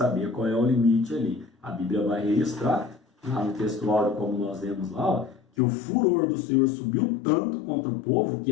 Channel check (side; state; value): right; drops out; at 5.4 s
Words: qual é o limite ali. A Bíblia vai registrar, lá no textuário, como nós vemos lá, ó, que o furor do Senhor subiu tanto contra o povo que